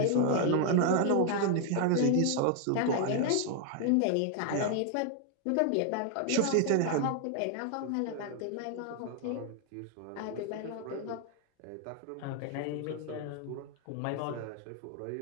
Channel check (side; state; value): both; different; correlation 0.00